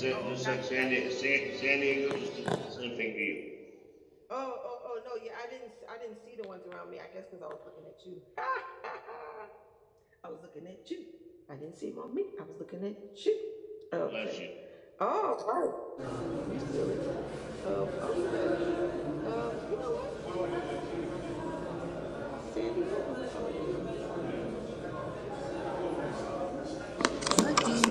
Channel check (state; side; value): identical; both; correlation 1.00